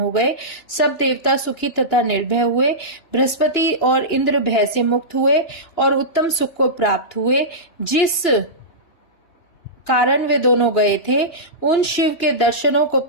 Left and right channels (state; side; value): late; right; 2.9 ms